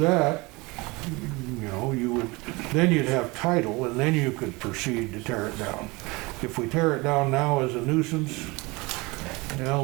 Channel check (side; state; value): left; quieter; 24.6 dB